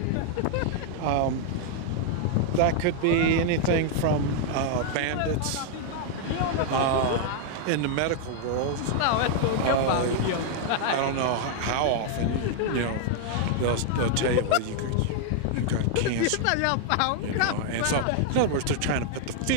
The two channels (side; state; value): both; different; correlation 0.00